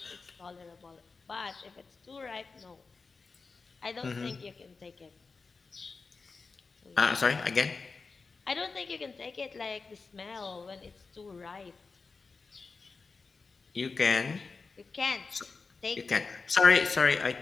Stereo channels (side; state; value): right; quieter; 4.4 dB